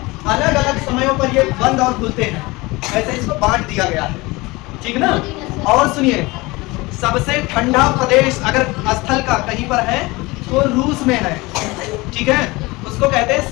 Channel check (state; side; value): quieter; right; 22.7 dB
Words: अलग समयों पर ये बंद और खुलते हैं, ऐसे इसको बांट दिया गया है, ठीक ना। और सुनिए, सबसे ठंडा प्रदेश अगर स्थल का कहीं पर है तो रूस में है, ठीक है। उसको कहते हैं